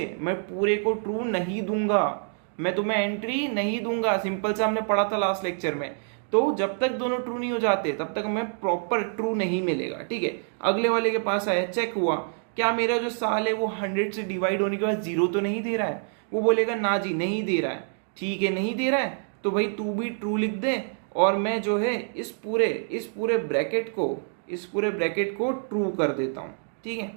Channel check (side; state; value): left; silent; 61 dB below the other